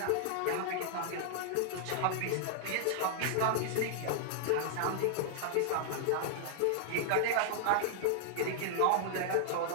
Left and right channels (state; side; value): different; both; correlation -0.01